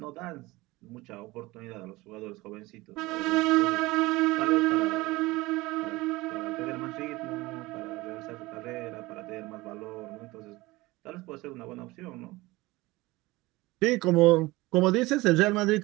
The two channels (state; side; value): quieter; left; 20.7 dB